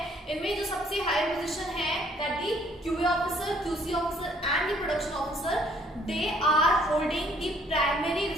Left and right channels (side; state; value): both; normal; correlation 0.63